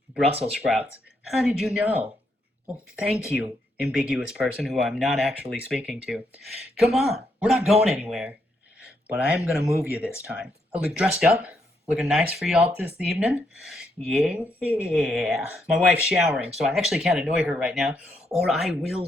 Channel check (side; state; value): both; normal; correlation 0.78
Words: Brussels sprouts. How did you know? Well, thank you, ambiguous person who I'm not actually speaking to. Come on, we're not going anywhere. But I am going to move you this time. I look dressed up, looking nice for y'all this evening. Yeah. My wife's showering, so I actually can't annoy her right now, or I will